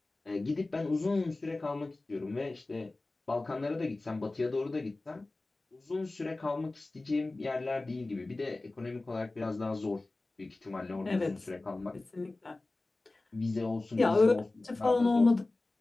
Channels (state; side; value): quieter; right; 3.1 dB